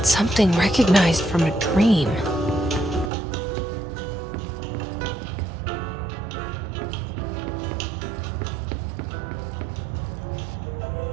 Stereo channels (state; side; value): drops out; left; at 3.1 s